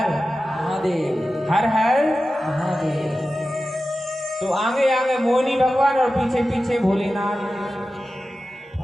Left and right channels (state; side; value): normal; both; correlation 0.94